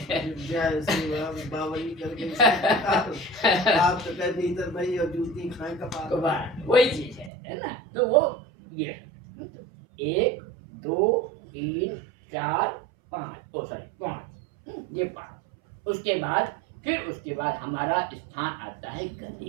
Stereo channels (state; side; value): drops out; left; at 7.3 s